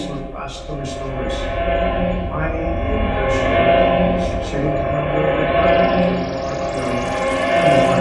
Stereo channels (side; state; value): both; identical; correlation 1.00